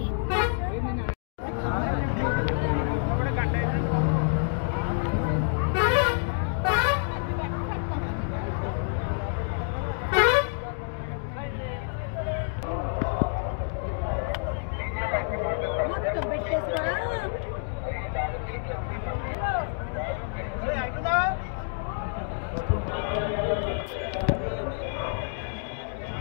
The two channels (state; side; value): silent; right; 59 dB below the other